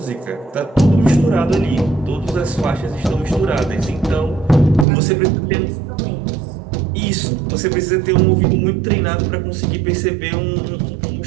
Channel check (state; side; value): drops out; left; at 4.9 s